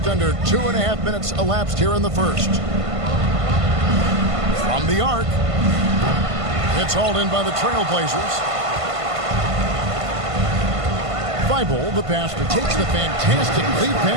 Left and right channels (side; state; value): left; late; 1.5 ms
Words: under 2.5 minutes elapsed here in the first. From the arc. It's hauled in by the Trailblazers. Thibault, the passer, takes the fantastic lead